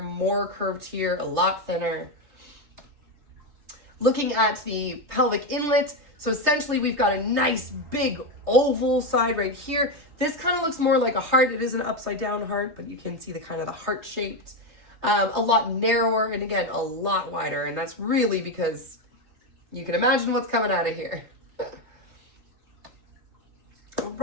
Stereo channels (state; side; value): late; left; 3.3 ms